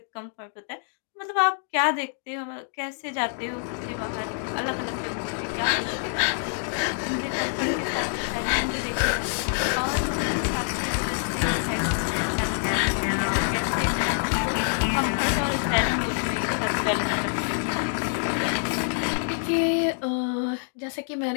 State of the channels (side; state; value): right; silent; digital silence